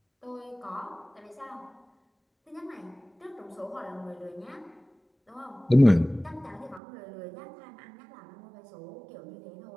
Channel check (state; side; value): drops out; left; at 6.8 s